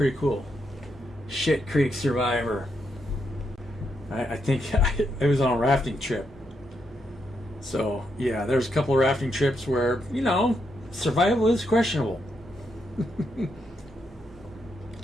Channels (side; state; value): both; normal; correlation 0.81